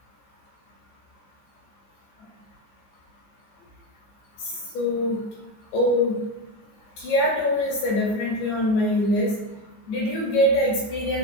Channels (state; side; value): late; right; 15 ms